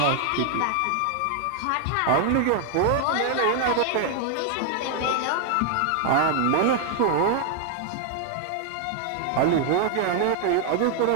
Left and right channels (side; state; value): both; different; correlation 0.00